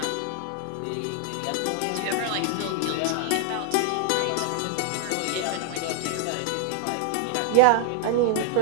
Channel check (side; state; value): both; different; correlation 0.00